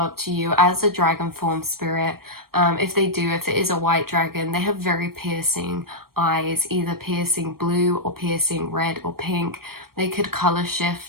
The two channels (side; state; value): left; late; 0.94 ms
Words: to you as a dragon form spirit. If it is a white dragon, they have very piercing eyes, either piercing blue or piercing red or pink. They could color